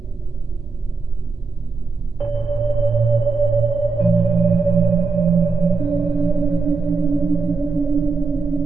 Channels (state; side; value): quieter; left; 4.6 dB